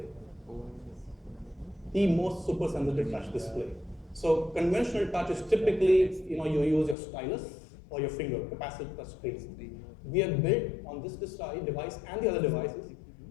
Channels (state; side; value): drops out; right; at 7.0 s